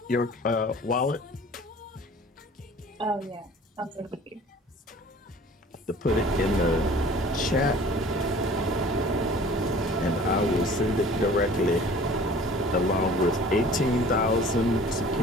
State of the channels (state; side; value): normal; both; correlation 0.47